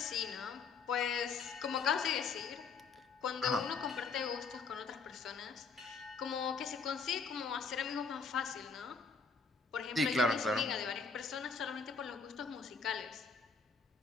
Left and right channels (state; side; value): quieter; right; 4.8 dB